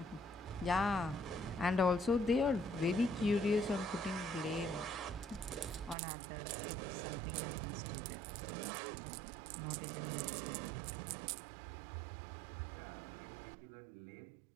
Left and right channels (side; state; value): left; drops out; at 6.0 s